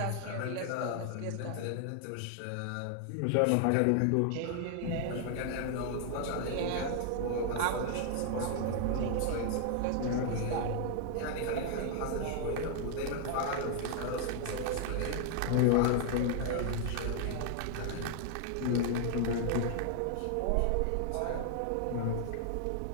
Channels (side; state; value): both; different; correlation 0.00